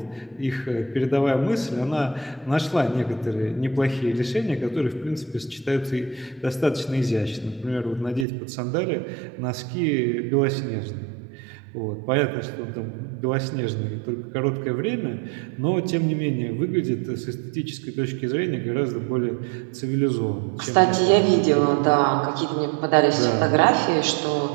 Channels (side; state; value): left; drops out; at 8.2 s